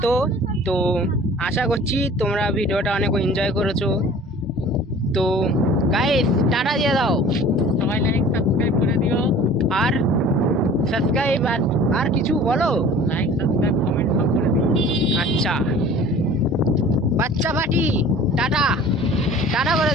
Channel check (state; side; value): normal; both; correlation 0.45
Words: তো আশা করছি তোমরা ভিডিওটা অনেক এনজয় করেছো। তো গাইস, টাটা দিয়ে দাও, সবাই লাইক সাবস্ক্রাইব করে দিও। আর সাবস্ক্রাইব আর কিছু বলো, লাইক সাবস্ক্রাইব কমেন্ট সব করে দিও। আচ্ছা বাচ্চা পাটি, টাটা টাটা করে